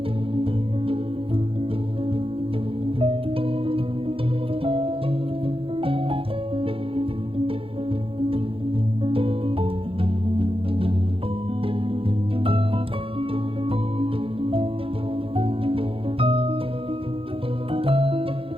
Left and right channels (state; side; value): late; left; 0.27 ms